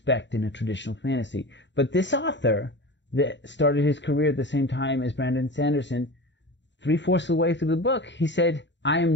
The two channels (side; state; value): right; late; 0.52 ms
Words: in a traditional fantasy. But this author that started his career at the same time as Brandon Sanderson, 3/4 of the way through the book, he said, I